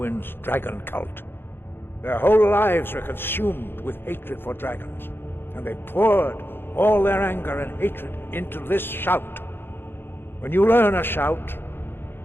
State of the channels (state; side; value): late; right; 0.10 ms